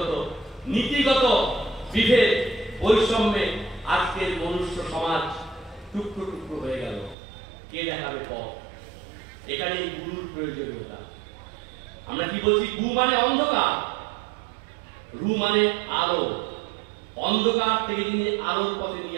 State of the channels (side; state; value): left; drops out; at 7.2 s